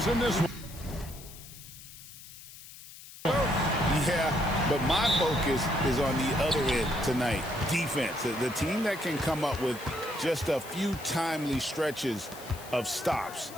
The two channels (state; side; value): noise; left; hiss, 16 dB below the sound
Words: in this one. Yeah, but my focus is on the other end tonight. Defense. The team that can come up with just a few timely stretches of stops,